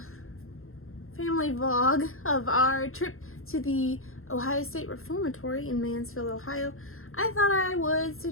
family vlog of our trip to the Ohio State Reformatory in Mansfield, Ohio, I thought I would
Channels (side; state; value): right; late; 0.61 ms